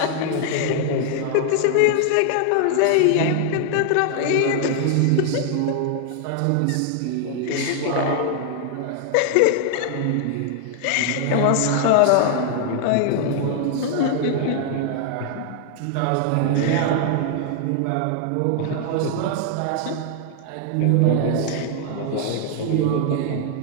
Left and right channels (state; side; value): different; both; correlation 0.00